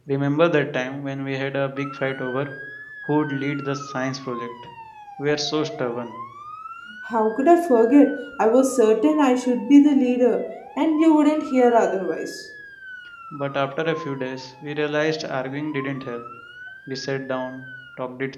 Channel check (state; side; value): identical; both; correlation 1.00